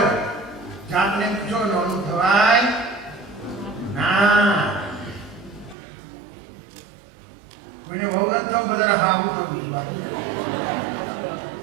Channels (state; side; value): drops out; left; at 5.8 s